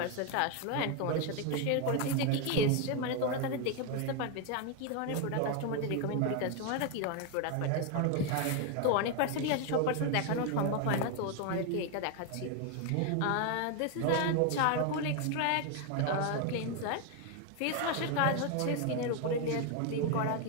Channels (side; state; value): both; different; correlation 0.01